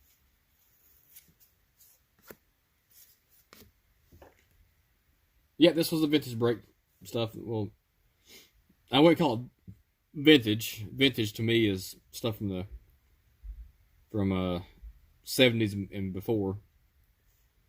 Yeah, this was the vintage brake stuff. Well, I wouldn't call it vintage. Vintage to me is stuff from the 70s and before.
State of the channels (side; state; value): both; identical; correlation 1.00